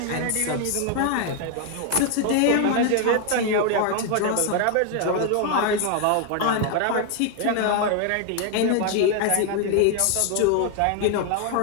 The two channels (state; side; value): different; both; correlation 0.00